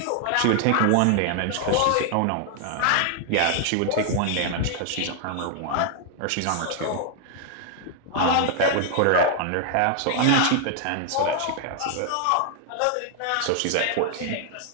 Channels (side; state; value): both; different; correlation 0.00